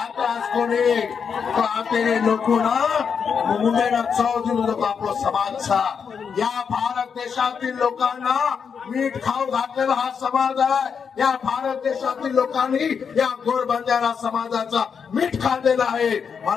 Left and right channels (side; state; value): right; quieter; 6.5 dB